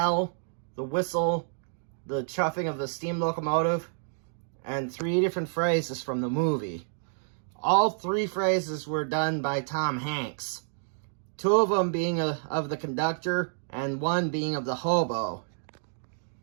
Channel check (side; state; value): left; silent; digital silence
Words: the whistle, the chuffing of the steam locomotive, and 3 different phrases from the movie. All 3 phrases were done by Tom Hanks. 2 of them being of the conductor, and 1 being of the hobo.